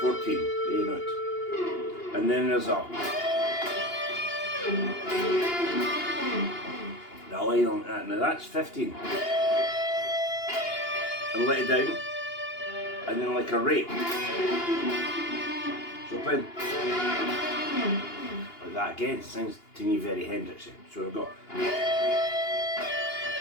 14, the A note. And then there's a line on that. Now that's 15. And let it down, and then like a rake. So playing like that again, sounds to me very Hendrixy. So we've got,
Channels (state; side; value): late; right; 2.8 ms